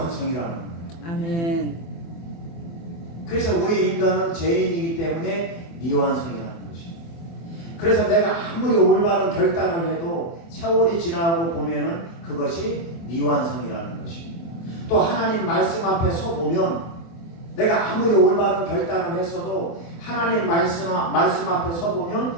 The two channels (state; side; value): late; right; 24 ms